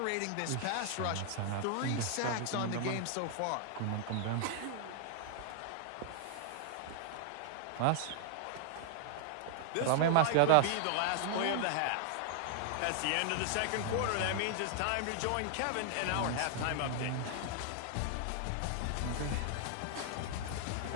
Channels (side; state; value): both; different; correlation 0.00